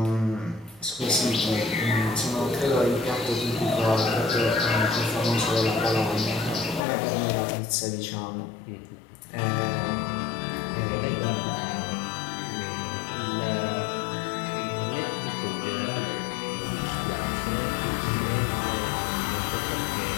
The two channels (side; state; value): right; drops out; at 6.8 s